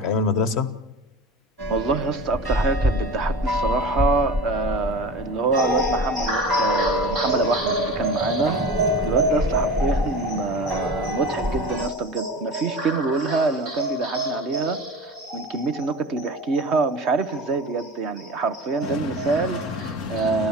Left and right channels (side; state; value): both; normal; correlation 0.33